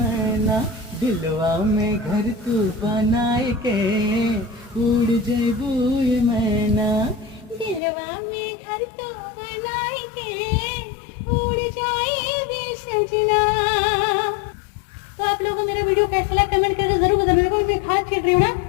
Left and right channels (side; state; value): right; drops out; at 7.8 s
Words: दिलवा में घर तू बनाए के, उड़ जइबू ये मैना। दिलवा में घर तो बनाए के उड़ जाए भी सजना। तो आप लोगों को मेरा वीडियो कैसा लगा कमेंट करके जरूर बताना। मेरे को मैं खाद छीट रही हूँ ना।